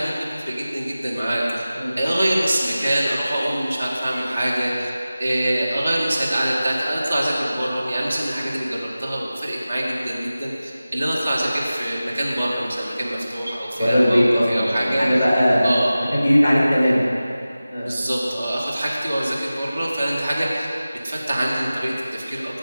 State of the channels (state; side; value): inverted; both; correlation -0.96